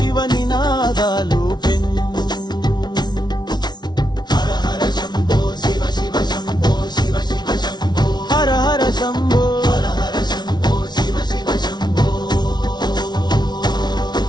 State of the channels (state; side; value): late; right; 0.20 ms